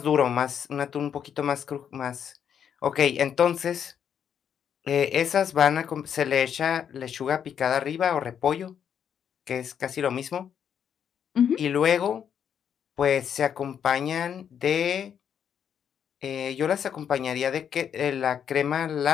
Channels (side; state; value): right; quieter; 8.3 dB